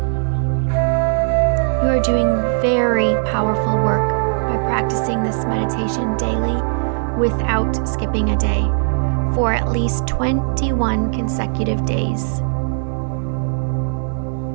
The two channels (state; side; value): silent; left; digital silence